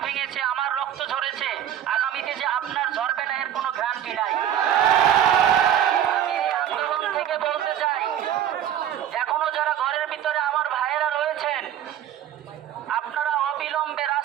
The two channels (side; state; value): left; quieter; 10.6 dB